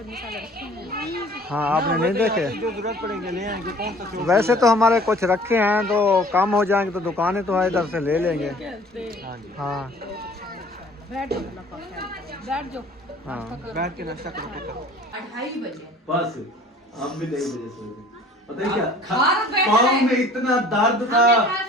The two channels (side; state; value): both; normal; correlation 0.50